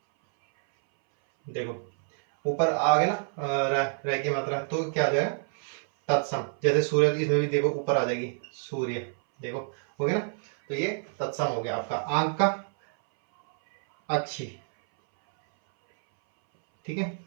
देखो ऊपर आ गया ना रह की मात्रा, तो क्या आ जाएगा, तत्सम, जैसे सूर्य, इसमें भी देखो ऊपर आ जाएगी सूर्य, देखो हो गया ना, तो ये तत्सम हो गया आपका। आंख का अक्षी, ठीक है,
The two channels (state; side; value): silent; left; 60 dB below the other